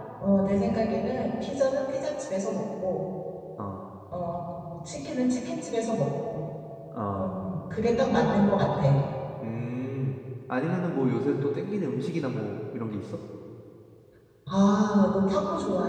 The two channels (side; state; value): both; identical; correlation 1.00